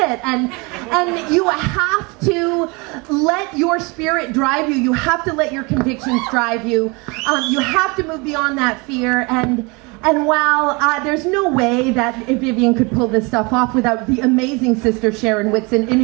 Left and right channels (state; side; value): quieter; left; 27.9 dB